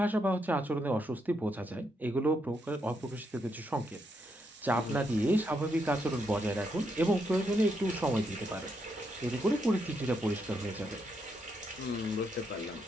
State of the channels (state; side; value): normal; both; correlation 0.79